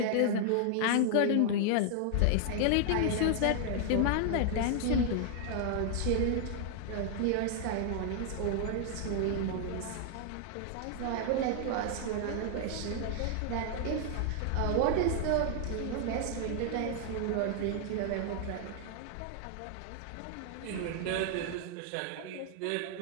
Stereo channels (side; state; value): both; different; correlation 0.00